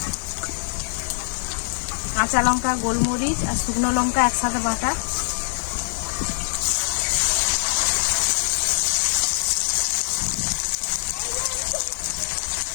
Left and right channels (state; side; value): silent; right; digital silence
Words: কাঁচা লঙ্কা, গোলমরিচ আর শুকনো লঙ্কা একসাথে বাটা,